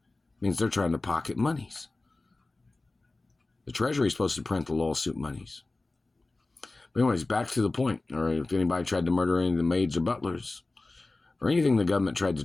means they're trying to pocket monies. The Treasury is supposed to print the lawsuit monies. But anyways, back to the point. Or if anybody tried to murder any of the maids or butlers, or anything the government tried to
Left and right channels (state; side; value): quieter; right; 3.2 dB